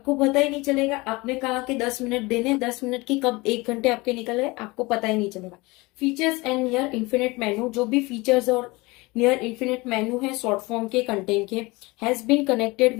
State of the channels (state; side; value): quieter; right; 23.4 dB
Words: पता ही नहीं चलेगा। आपने कहा कि 10 मिनट देने, 10 मिनट की कब 1 घंटे आपके निकल गए आपको पता ही नहीं चलेगा। Features and near infinite menu, जो भी फीचर्स और नियर इन्फिनिट मेनू है शॉर्ट फॉर्म के कंटेंट के, has been connected